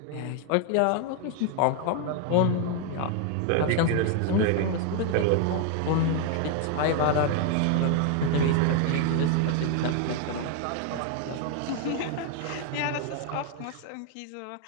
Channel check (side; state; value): both; different; correlation 0.00